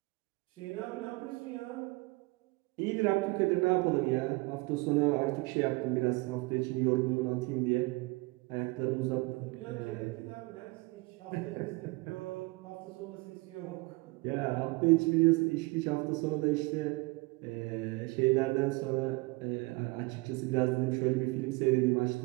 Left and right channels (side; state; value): left; quieter; 24.8 dB